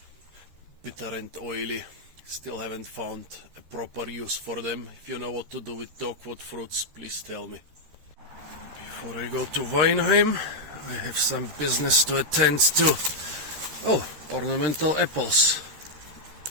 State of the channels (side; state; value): left; late; 13 ms